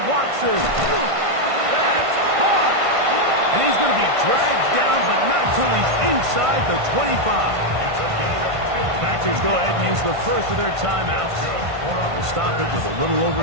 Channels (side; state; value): left; late; 1.5 ms